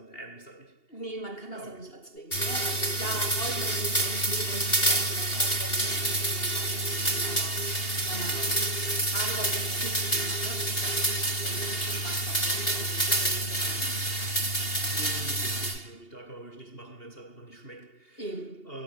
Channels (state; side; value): late; right; 2.8 ms